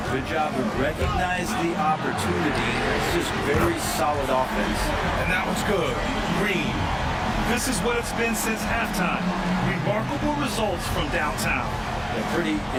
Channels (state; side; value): identical; both; correlation 1.00